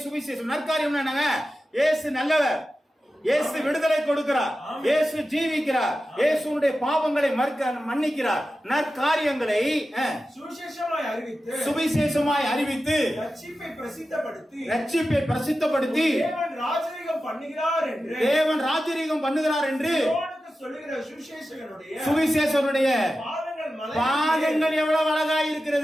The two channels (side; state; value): both; normal; correlation 0.93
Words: சுவிசேஷம். நற்காரியம் என்னங்க? இயேசு நல்லவர், இயேசு விடுதலை கொடுக்கிறார், இயேசு ஜீவிக்கிறார், இயேசுடைய பாவங்களை மன்னிக்கிறார். நற்காரியங்களை சுவிசேஷமாய் அறிவித்து ரட்சிப்பை பிரசித்தப்படுத்தி தேவன் ராஜரீகம் பண்ணுகிறார் என்று சொல்லுகிற சுவிசேஷனுடைய பாதங்கள் எவ்வளவு அழகா